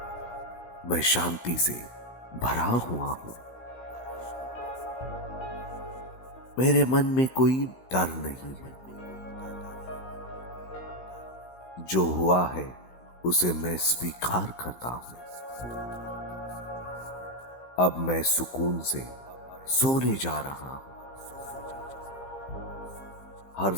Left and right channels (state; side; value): late; right; 16 ms